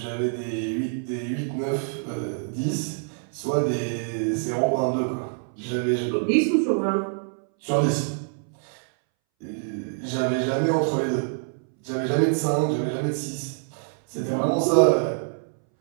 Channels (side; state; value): left; silent; 61 dB below the other